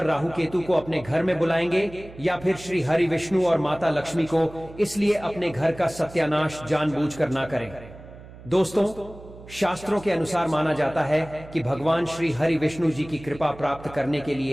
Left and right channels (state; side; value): noise; right; hum, 18 dB below the sound